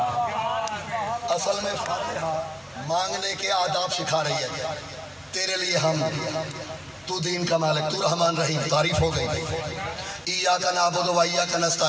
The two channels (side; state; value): both; identical; correlation 1.00